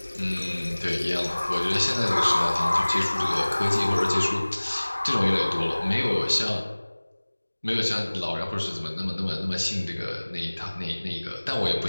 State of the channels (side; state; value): both; inverted; correlation -1.00